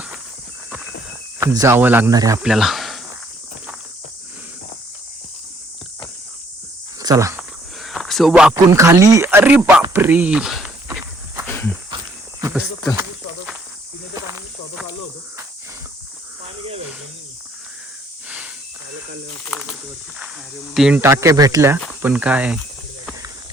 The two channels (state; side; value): normal; both; correlation 0.64